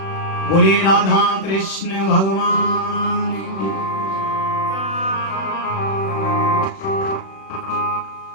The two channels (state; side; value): late; right; 36 ms